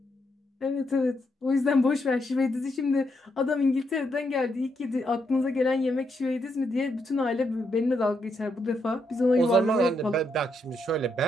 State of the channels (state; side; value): normal; both; correlation 0.79